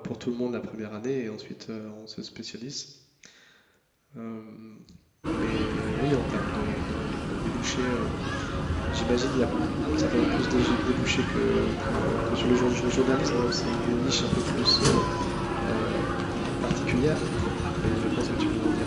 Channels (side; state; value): both; identical; correlation 1.00